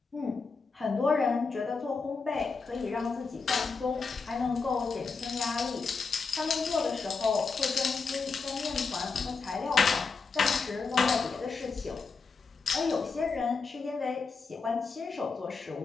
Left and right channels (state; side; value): quieter; right; 4.7 dB